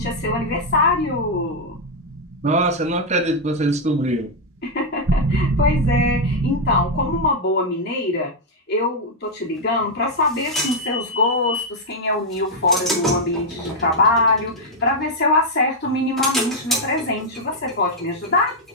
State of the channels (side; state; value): both; normal; correlation 0.00